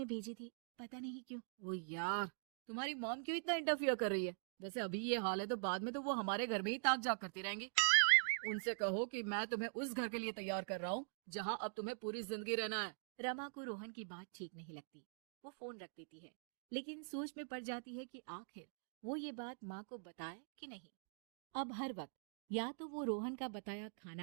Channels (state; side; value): silent; left; digital silence